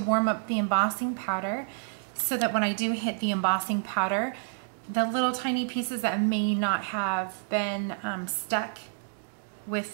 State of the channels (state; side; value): silent; left; digital silence